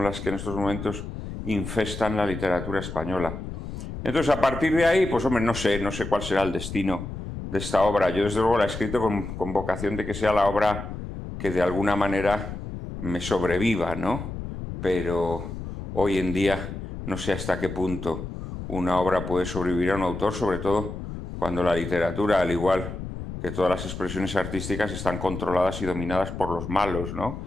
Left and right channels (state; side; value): noise; left; rumble, 8 dB below the sound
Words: las que en estos momentos infestan la literatura española. Entonces, a partir de ahí, pues hombre, no sé cuál será el destino de esta obra. Yo desde luego la he escrito con vocación de que sea la obra que de alguna manera me sobreviva, ¿no? Pero hoy en día no sé hasta qué punto una obra puede sobrevivir a un autor, sobre todo cuando la literatura, al igual que todas las expresiones artísticas, están controladas y dominadas por los malos, ¿no?